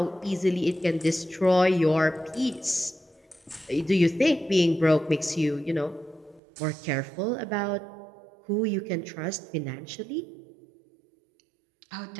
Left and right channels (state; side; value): drops out; left; at 6.4 s